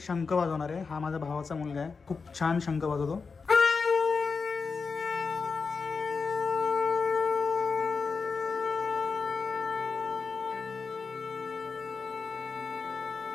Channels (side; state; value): right; quieter; 4.9 dB